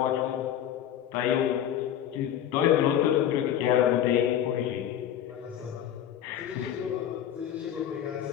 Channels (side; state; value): right; quieter; 10.5 dB